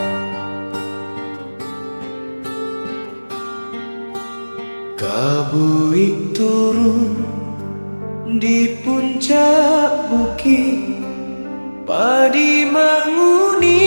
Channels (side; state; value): both; inverted; correlation -1.00